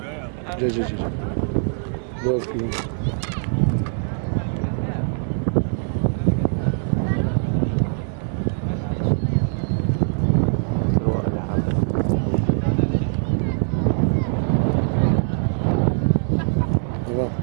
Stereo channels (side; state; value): left; silent; digital silence